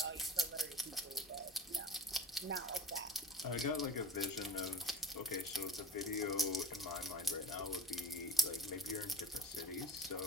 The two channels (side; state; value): both; normal; correlation 0.38